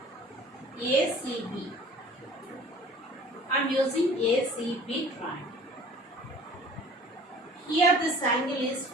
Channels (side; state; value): both; normal; correlation 0.47